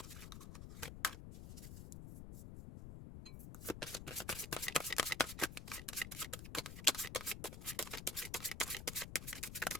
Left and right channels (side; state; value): left; noise; rumble, 9 dB below the sound